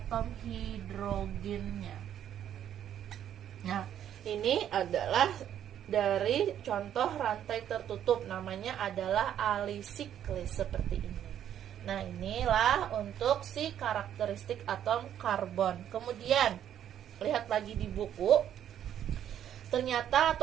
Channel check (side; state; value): left; quieter; 10.2 dB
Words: hidrogennya. Nah, ini adalah dari contoh rantai tertutup, namanya adalah alisiklis seperti ini. Nah, inilah untuk si karakteristik atom karbon. Kemudian, lihat lagi di buku. Ternyata